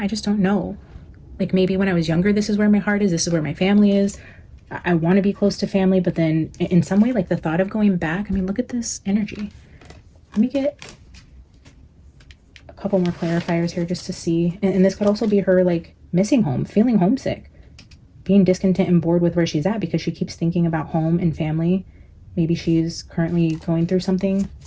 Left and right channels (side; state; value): both; identical; correlation 1.00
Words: just don't know. Like maybe when I was younger, this is where my heart is. This is where my family is. I want to be close to family, but then in some way, like the thought of going back, I mean, look at this energy. Let me get a couple more clarifiers here just to see. And this could also be her like missing home, feeling homesick, being discontent and bored with where she's at because she keeps thinking about home and family. Maybe she's currently going through something